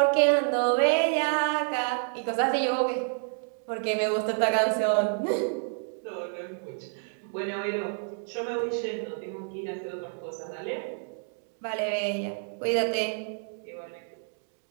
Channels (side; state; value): left; silent; 57 dB below the other